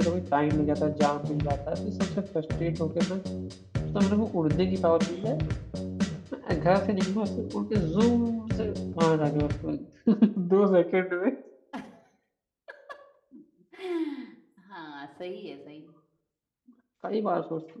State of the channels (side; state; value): both; identical; correlation 1.00